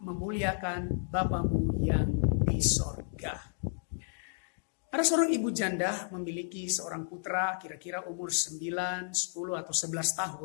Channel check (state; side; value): silent; right; digital silence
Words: Bapamu yang di sorga. Ada seorang ibu janda memiliki seorang putra kira-kira umur 9, 10 atau 11